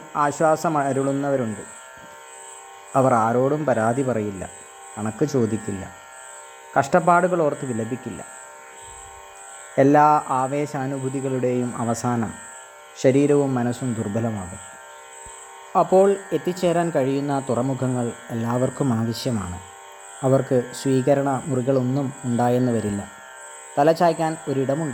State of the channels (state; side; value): identical; both; correlation 1.00